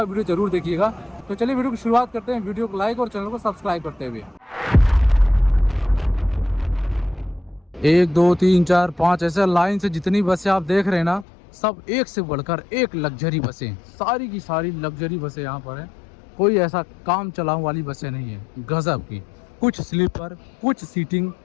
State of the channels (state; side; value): drops out; right; at 11.2 s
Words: वीडियो जरूर देखिएगा। तो चलिए वीडियो की शुरुआत करते हैं। वीडियो को लाइक और चैनल को सब्सक्राइब करते हुए। 1 2 3 4 5 ऐसे लाइन से जितनी बसें आप देख रहे हैं ना, सब एक से बढ़कर एक लग्जरी बसें, सारी की सारी लग्जरी बसें यहाँ पर हैं। कोई ऐसा काम चलाऊ वाली बसें नहीं है, गजब की। कुछ स्लीपर, कुछ सीटिंग,